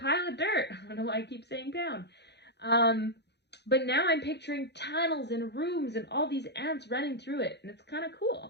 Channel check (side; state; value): right; late; 0.50 ms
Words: of dirt. I don't know why I keep saying pound. But now I'm picturing tunnels and rooms and all these ants running through it, and it's kind of